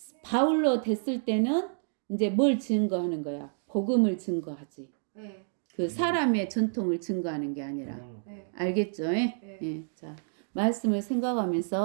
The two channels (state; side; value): silent; left; digital silence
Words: 바울로 됐을 때는 이제 뭘 증거하는 거야? 복음을 증거하지. 네. 그 사람의 전통을 증거하는 게 아니라. 네. 알겠죠? 네. 자, 말씀을